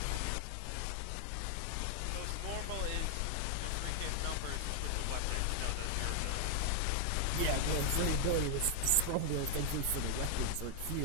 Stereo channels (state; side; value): different; both; correlation 0.00